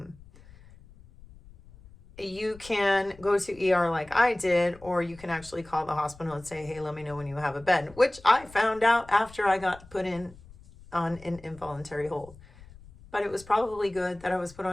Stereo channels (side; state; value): left; noise; rumble, 22 dB below the sound